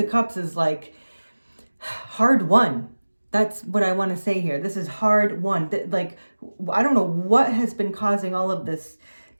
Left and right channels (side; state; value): both; inverted; correlation -1.00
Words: Cups is like hard won. That's what I want to say here. This is hard won. Like, I don't know what has been causing all of this